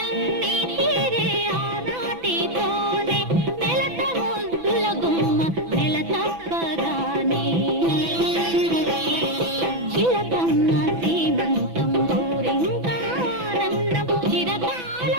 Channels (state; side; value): late; left; 6.0 ms